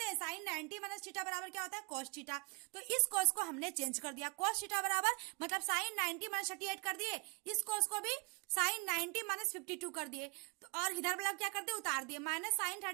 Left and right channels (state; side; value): quieter; left; 32.8 dB